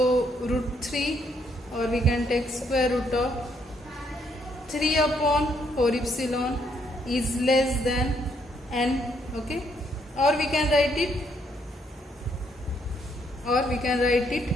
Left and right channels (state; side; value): normal; both; correlation 0.72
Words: root 3, or we can take square root of 3 upon 4 epsilon is less than n. Okay. Or we can write it